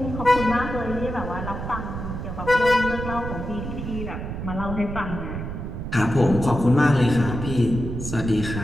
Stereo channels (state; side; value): noise; right; rumble, 6 dB below the sound